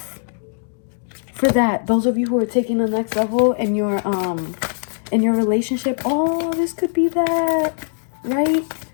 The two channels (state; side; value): silent; right; digital silence